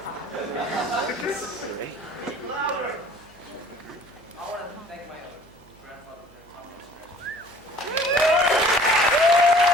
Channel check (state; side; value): noise; right; hum, 28 dB below the sound